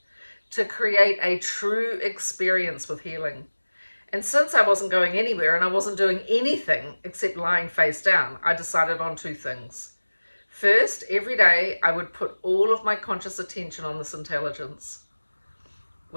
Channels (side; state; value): both; inverted; correlation -1.00